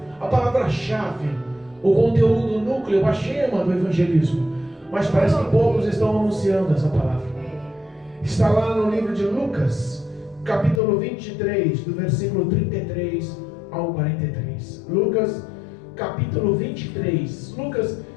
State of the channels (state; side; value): drops out; right; at 10.8 s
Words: a palavra-chave, o conteúdo, o núcleo, a gema do evangelismo. Mas parece que poucos estão anunciando essa palavra. Está lá no livro de Lucas, capítulo 23, do versículo 33 ao 43. Lucas, capítulo 23. Lucas